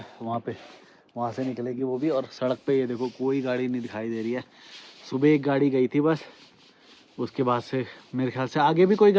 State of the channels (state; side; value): identical; both; correlation 1.00